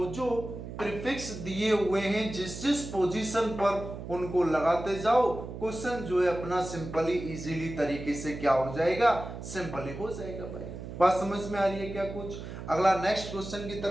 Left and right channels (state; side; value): noise; right; hum, 10 dB below the sound